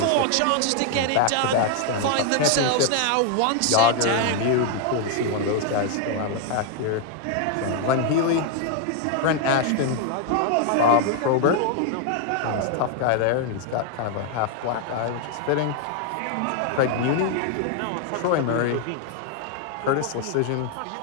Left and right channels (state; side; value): different; both; correlation 0.00